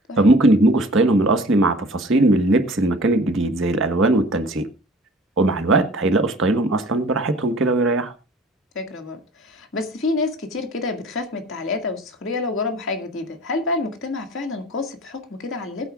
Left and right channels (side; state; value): both; normal; correlation 0.48